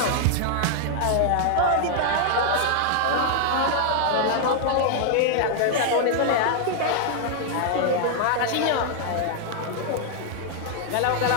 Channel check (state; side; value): different; both; correlation 0.00